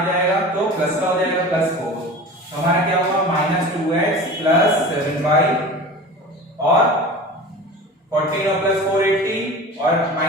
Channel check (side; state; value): both; normal; correlation 0.35